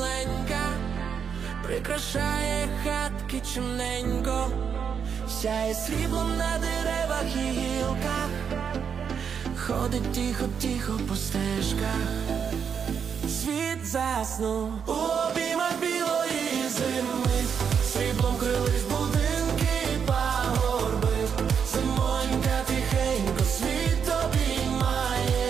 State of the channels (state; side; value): quieter; left; 7.1 dB